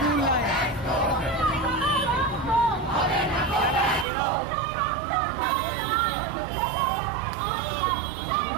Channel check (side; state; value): left; drops out; at 4.0 s